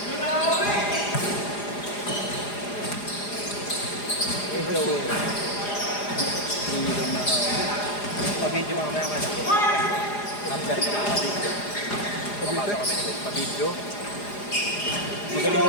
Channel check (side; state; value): right; late; 4.9 ms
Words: Ikaw eh. Pa-video mamaya ka na. After ka pa-video. Papasok kami nito. Pa-video.